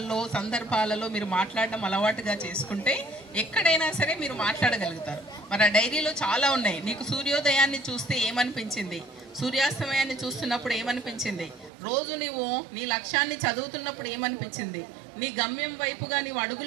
సందర్భాలలో మీరు మాట్లాడడం అలవాటుగా చేసుకుంటే ఎక్కడైనా సరే మీరు మాట్లాడగలుగుతారు. మరి ఆ డైరీలో చాలా ఉన్నాయి. నీకు సూర్యోదయాన్ని చూస్తే ఏమనిపించింది, సూర్యాస్తమయాన్ని చూస్తున్నప్పుడు ఏమనిపించింది, రోజు నువ్వు నీ లక్ష్యాన్ని చదువుతున్నప్పుడు ఏమనిపించింది, నీ గమ్యం వైపుగా నీవు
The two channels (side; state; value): left; drops out; at 11.7 s